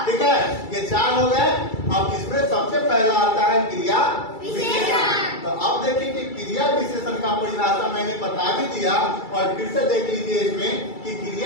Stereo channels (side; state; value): right; late; 2.3 ms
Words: ठीक है। ये 4 हो गए। अब इसमें सबसे पहला आता है क्रिया विशेषण। तो अब देखिए कि क्रिया विशेषण का परिभाषा मैंने बता भी दिया और फिर से देख लीजिए इसमें कि